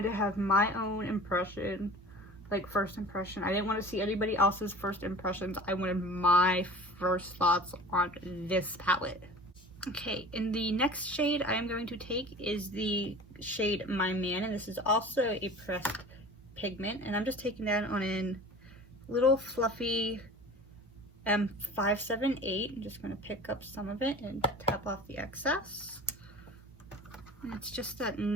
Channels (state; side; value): normal; both; correlation 0.40